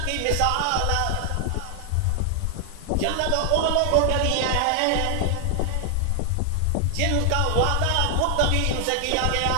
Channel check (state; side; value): different; both; correlation 0.00